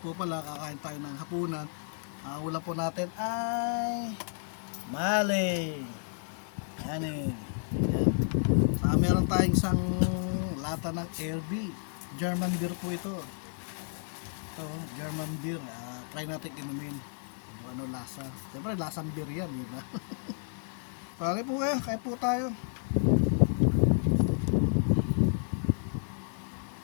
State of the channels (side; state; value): right; silent; 57 dB below the other